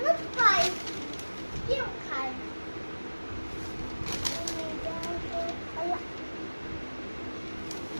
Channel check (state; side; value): inverted; both; correlation -1.00